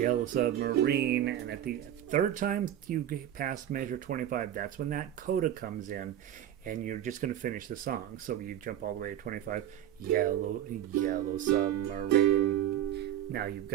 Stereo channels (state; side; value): quieter; left; 11.3 dB